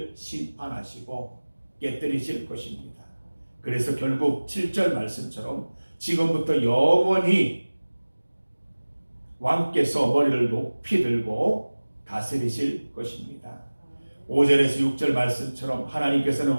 심판하시고 깨뜨리실 것입니다. 그래서 결국 7절 말씀처럼 지금부터 영원히 왕께서 머리를 높이 들고 다스리실 것입니다. 5절에서 6절 말씀처럼 하나님께서는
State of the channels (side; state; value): both; inverted; correlation -1.00